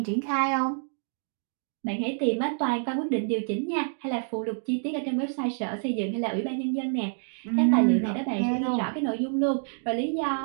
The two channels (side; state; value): left; silent; digital silence